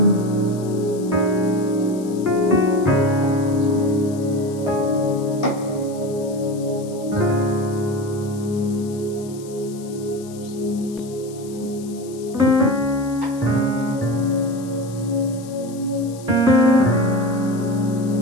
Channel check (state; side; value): noise; left; hiss, 20 dB below the sound